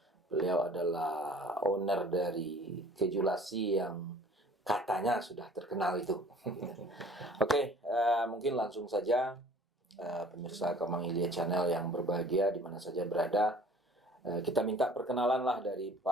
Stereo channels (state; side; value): normal; both; correlation 0.50